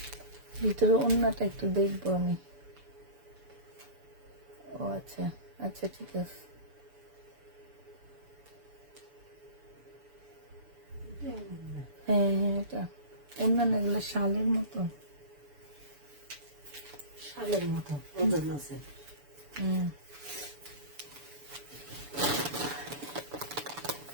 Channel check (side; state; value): left; late; 7.0 ms